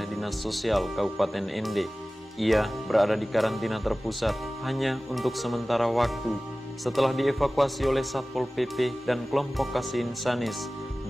Dinas Sosial Kabupaten Ende. Ia berada di karantina terpusat hanya untuk sementara waktu setelah dievakuasi oleh Satpol PP dan kelompok Kasih Insanis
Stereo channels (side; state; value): both; normal; correlation 0.97